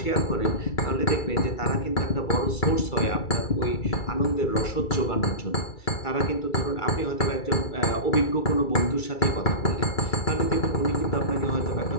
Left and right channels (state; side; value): late; right; 2.3 ms